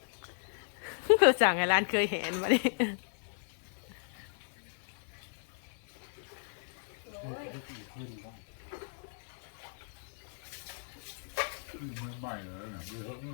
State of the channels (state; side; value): silent; right; digital silence